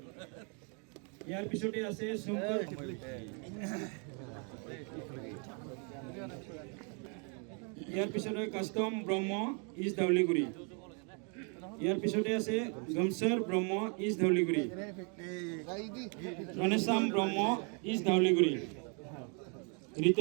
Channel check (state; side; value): quieter; left; 37.5 dB